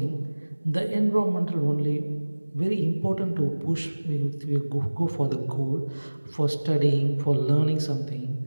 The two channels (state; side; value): inverted; both; correlation -1.00